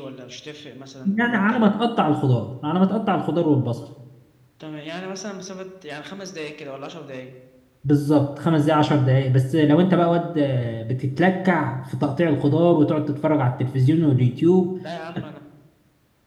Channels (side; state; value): both; identical; correlation 1.00